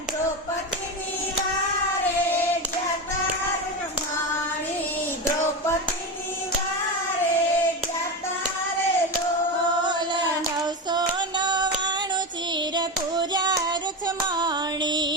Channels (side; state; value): both; normal; correlation 0.17